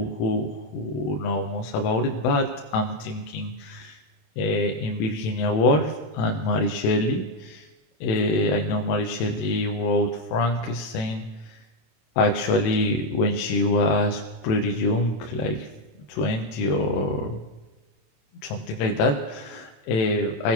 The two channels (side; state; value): right; late; 27 ms